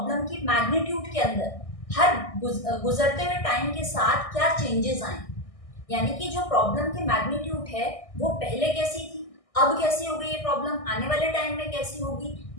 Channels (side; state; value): right; late; 1.6 ms